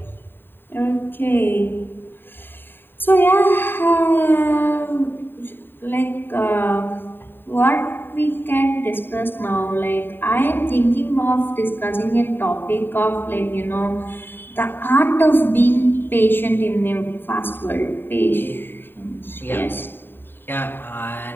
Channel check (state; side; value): late; right; 0.097 ms